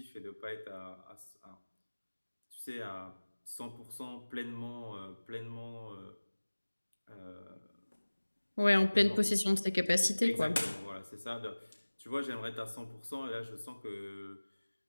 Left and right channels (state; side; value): inverted; both; correlation -1.00